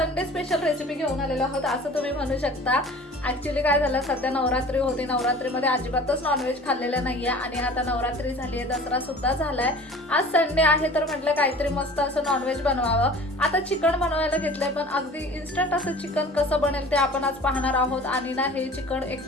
स्पेशल रेसिपी घेऊन आलेलो आहोत असं तुम्ही म्हणू शकता। ऍक्च्युअली काय झालं, सध्या नवरात्री होती, नवरात्रीमध्ये अजिबातच नॉनव्हेज खाल्लेलं नाहीये आणि आता नवरात्री झाली आहे, दसरा सुद्धा झालाय। आज संडे आहे तर म्हटलं काहीतरी मस्त असं नॉनव्हेज बनवावं। आता चिकन बनवायला घेतलंय, पण अगदी इन्स्टंट असं चिकन कसं बनेल ते आपण आज पाहणार आहोत। आणि ना हे चिकन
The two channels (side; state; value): both; normal; correlation 0.44